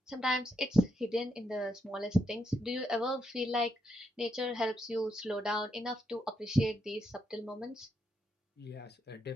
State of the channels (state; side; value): normal; both; correlation 0.81